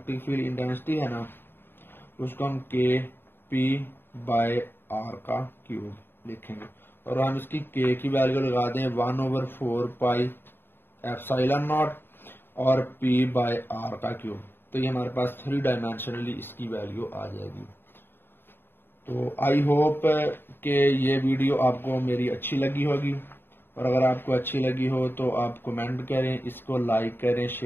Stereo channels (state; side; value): late; right; 0.10 ms